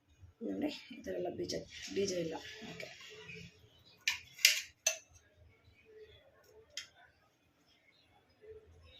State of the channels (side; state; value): both; identical; correlation 1.00